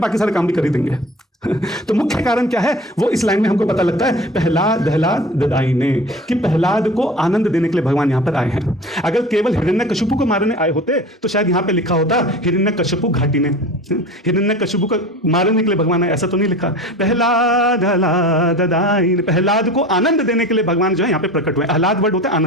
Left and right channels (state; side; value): normal; both; correlation 0.38